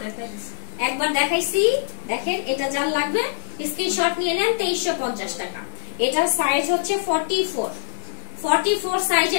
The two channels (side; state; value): right; silent; 63 dB below the other